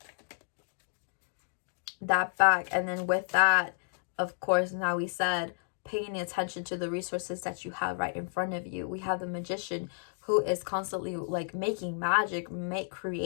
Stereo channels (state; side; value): silent; right; digital silence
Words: And then with that, of course, now we said paying attention to the resources that you have right in front of you. We have the Magician, who is constantly like making magic,